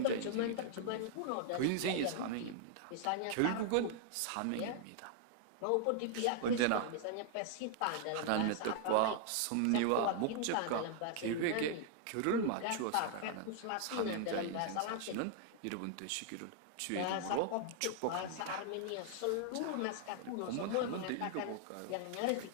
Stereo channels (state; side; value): different; both; correlation -0.01